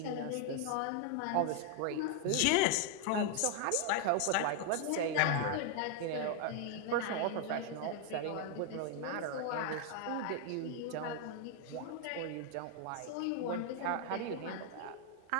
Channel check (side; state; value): both; different; correlation 0.00